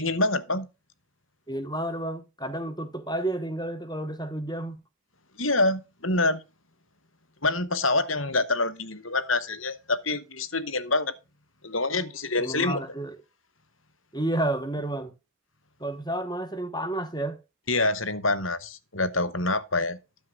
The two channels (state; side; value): normal; both; correlation -0.17